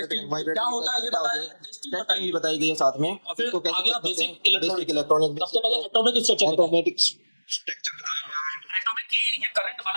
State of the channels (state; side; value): inverted; both; correlation -1.00